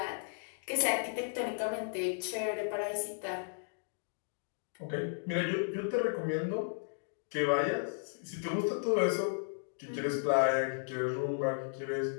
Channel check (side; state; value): right; silent; digital silence